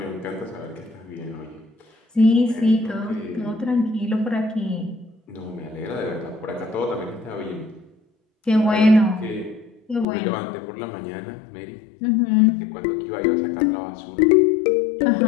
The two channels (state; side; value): drops out; right; at 10.1 s